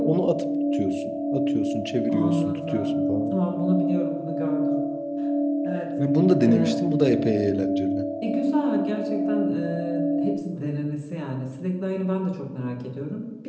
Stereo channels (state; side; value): identical; both; correlation 1.00